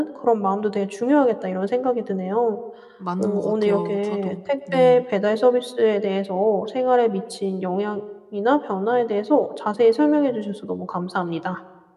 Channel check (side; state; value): both; identical; correlation 1.00